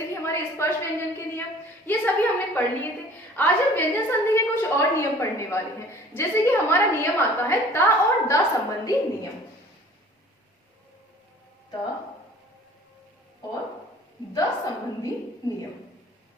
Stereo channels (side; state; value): both; normal; correlation 0.49